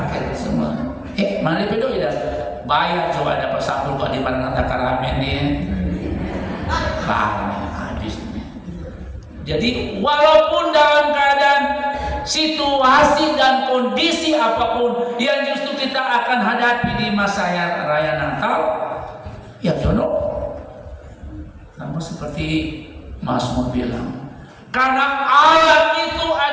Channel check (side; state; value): both; identical; correlation 1.00